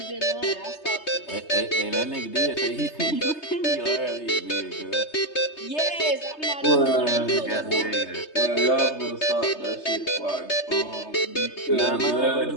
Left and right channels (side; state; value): right; late; 3.3 ms